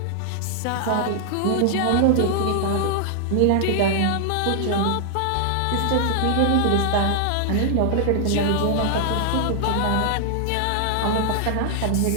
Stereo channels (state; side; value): different; both; correlation 0.00